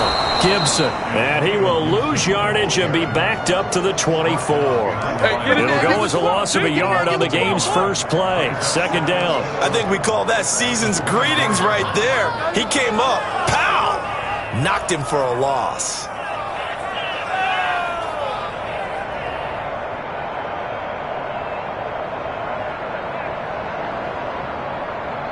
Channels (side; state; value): both; identical; correlation 1.00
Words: Gibson. And he will lose yardage and be backed up to the 24. It'll go as a loss of a yard on the game's first play. Second down. I think we call that season's greetings right there. He came up. Pow! Knocked him for a loss.